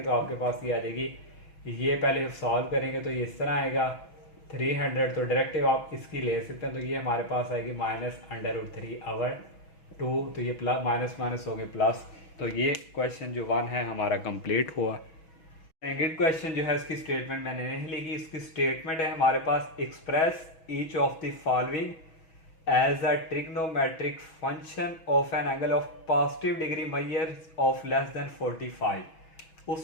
तो आपके पास ये आ जाएगी। ये पहले सॉल्व करेंगे तो ये इस तरह आएगा 300। तो डायरेक्टिव आप इसकी ले सकते हैं। तो ये हमारे पास आएगी -√3/2। तो ये प्लस माइनस माइनस हो गए प्लस। तो ये क्वेश्चन जो 1 है हमारा कंप्लीट हुआ। सेकंड क्वेश्चन जो है इसकी स्टेटमेंट मैंने नहीं लिखी। इसकी स्टेटमेंट है हमारे पास express each of the following as a trigonometric function of an angle of positive degree measure of less than 45।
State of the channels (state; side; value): late; right; 6.2 ms